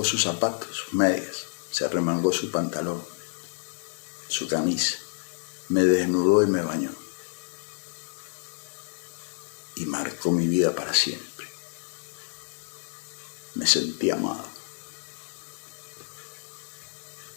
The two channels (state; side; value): silent; right; digital silence